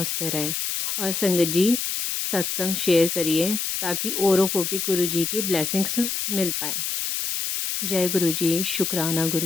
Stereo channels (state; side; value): noise; left; hiss, 2 dB below the sound